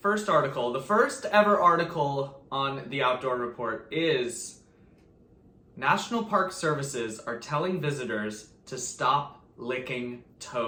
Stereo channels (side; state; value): both; identical; correlation 1.00